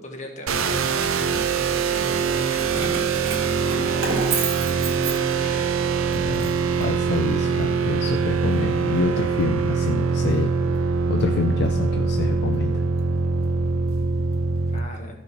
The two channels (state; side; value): quieter; left; 3.3 dB